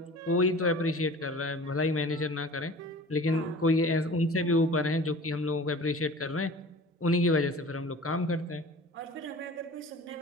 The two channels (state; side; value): normal; both; correlation 0.42